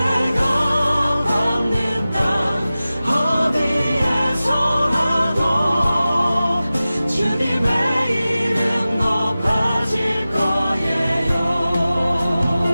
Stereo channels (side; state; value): both; inverted; correlation -0.96